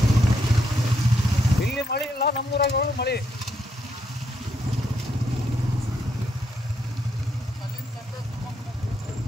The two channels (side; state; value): both; normal; correlation 0.77